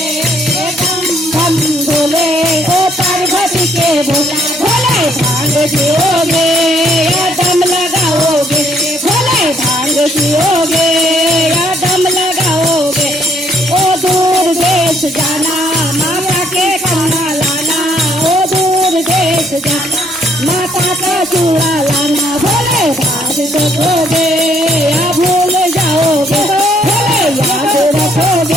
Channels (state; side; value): normal; both; correlation 0.68